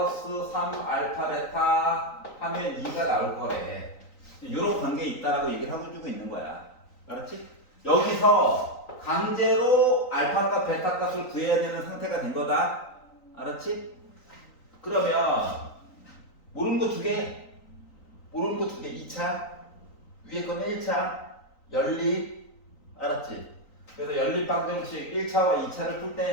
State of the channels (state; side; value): late; right; 3.9 ms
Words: 3알파 베타 하면 2가 나올 거래. 요런 관계에 있다라고 얘기를 하고 주고 있는 거야. 알았지? 여기서 강제로 알파 값, 베타 값을 구해야 되는 상태가 된 거다. 알았지? 그러면 모르는 거 2개, 모르는 거 2개, 2차, 위에 거는 1차, 연립. 알았지? 그래서 연립 방정식 1차와 2차를 풀